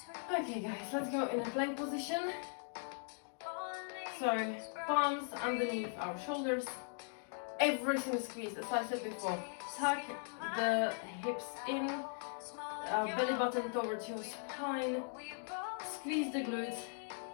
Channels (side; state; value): right; silent; 51 dB below the other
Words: Okay guys, let's go in a plank position. So palms underneath our shoulders, everything squeezed as I said before. Tuck the hips in, belly button towards your spine, squeeze the glutes